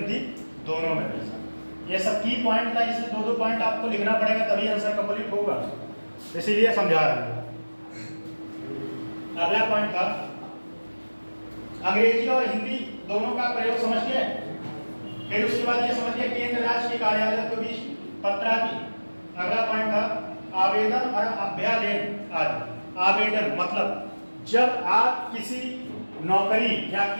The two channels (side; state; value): both; inverted; correlation -1.00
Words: दोनों में भेजा। ये सब की पॉइंट था, इसलिए दो पॉइंट आपको लिखना पड़ेगा, तभी आंसर कंप्लीट होगा, इसीलिए समझा रहा हूं। अगला पॉइंट था अंग्रेजी और हिंदी दोनों का प्रयोग, समझ गए। फिर उसके बाद ये समझ गए केंद्र राज्य के कार्यालय के बीच पत्रादि। अगला पॉइंट था आवेदन और अभ्यावेदन आदि। आवेदन मतलब जब आप किसी नौकरी या